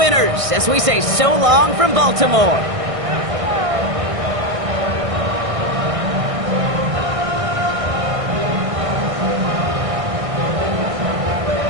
as we say so long from Baltimore.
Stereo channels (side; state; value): left; late; 1.6 ms